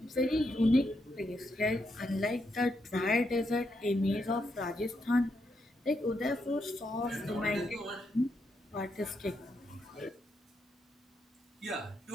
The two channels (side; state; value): both; normal; correlation 0.81